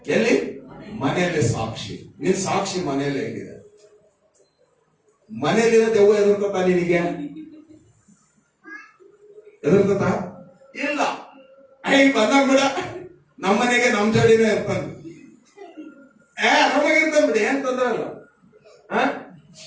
ಎಲ್ಲಿ? ಮನೆಯಲ್ಲಿ ಸಾಕ್ಷಿ. ನಿನ್ ಸಾಕ್ಷಿ ಮನೆಯಲ್ಲೇ ಹೇಗಿದೆ? ಮನೆಯಲ್ಲಿರೋ ದೆವ್ವ ಎದುರ್ಕೊತಾ ನಿನಗೆ? ಎದುರ್ಕೊತಾ ಇಲ್ಲ. ಬಂದಾಗ ಬಿಡ, ನಮ್ಮನೆಗೆ ನಮ್ ಜೋಡಿನೇ ಇರ್ತಾನೆ. ಆರಾಮಾಗಿರ್ತಾನೆ ಬಿಡಿ, ಏನ್ ತೊಂದ್ರೆ ಇಲ್ಲ.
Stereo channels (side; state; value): both; identical; correlation 1.00